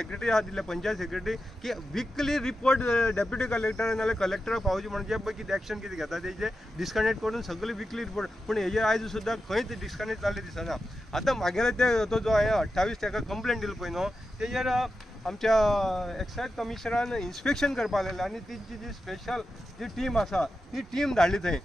आहा दिले पंचायत सेक्रेटरी की विकली रिपोर्ट डेप्युटी कलेक्टर नाल्यार कलेक्टराक पावचे म्हणून जे पळय कितें एक्शन कितें घेता तेजे डिस्कनेक्ट करून सगळी विकली रिपोर्ट पूण हेजेर आयज सुद्दां खंयच डिस्कनेक्ट जाल्लें दिसना आतां म्हागेले ते तो जो हांवें 28 ताका कंप्लेंट दिली पळय न्हू तेजेर आमच्या एक्सायज कमिशनरान इन्स्पेक्शन करपाक लायलें आनी तिची जी स्पेशल जी टीम आसा ती टीम धाडली थंय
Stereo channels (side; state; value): both; normal; correlation 0.90